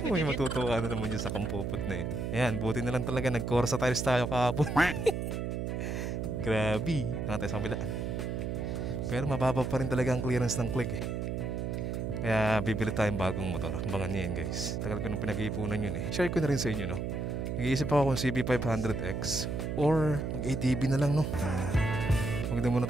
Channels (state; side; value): noise; right; hum, 2 dB below the sound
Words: May matutuwa na naman yun sa Kampopot na eh. Ayan, buti na lang talaga nag-Corsa tiles tayo kahapon. Grabe. Nakatay sa kabila. Pero mababa pa rin talaga ang clearance ng click eh. Kaya bibili tayong bagong motor. Abangan nyo yan guys. Tagal ko nung pinag-iipunan yun eh. Share ko na rin sa inyo no. Nag-iisip ako kung CB500X or mag-ADB na lang no. Huwag na muna